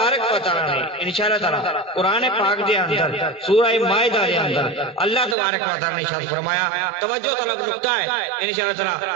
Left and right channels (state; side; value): drops out; left; at 5.4 s